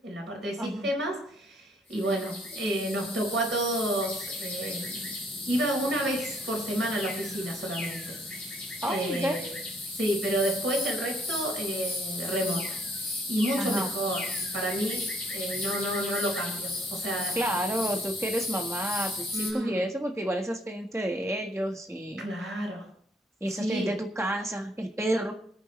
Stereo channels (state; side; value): normal; both; correlation 0.66